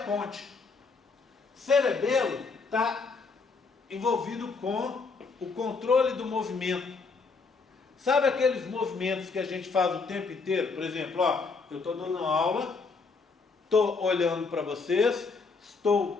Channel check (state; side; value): quieter; right; 4.5 dB